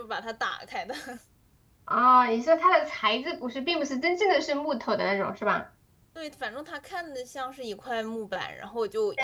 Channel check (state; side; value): identical; both; correlation 1.00